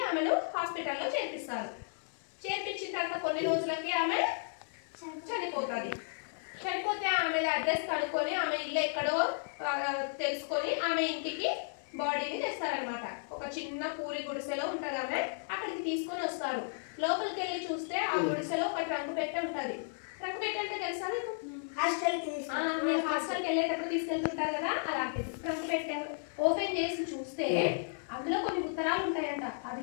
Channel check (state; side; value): silent; right; 55 dB below the other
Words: ఆమెను హాస్పిటల్లో చేర్పిస్తారు. చేర్పించిన తర్వాత కొన్ని రోజులకి ఆమె చనిపోతుంది. చనిపోతే ఆమె అడ్రస్ కనుక్కొని ఆమె ఇల్లు ఎక్కడో తెలుసుకొని ఆమె ఇంటికి బాడీని తెస్తారనమాట. ఒక చిన్న పూరి గుడిసెలో ఉంటది ఆమె, అక్కడికి తీసుకొని వస్తారు. లోపలికి వెళ్ళి చూస్తే ఆ గుడిసెలో ఒక ట్రంక్ పెట్టె ఉంటది. ట్రంక్ పెట్టె అంటే తెలుసా మీకు? మీరు హాస్టల్కి వెళ్ళేటప్పుడు తీసుకెళ్తుంటారు కదా, అలాంటిది ట్రంక్ పెట్టె ఓపెన్ చేసి చూస్తే అందులో కొన్ని ఉత్తరాలు ఉంటాయంట. అవి